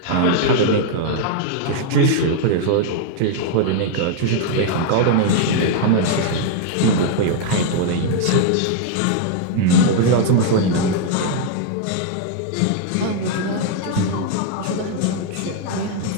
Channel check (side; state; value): both; different; correlation 0.00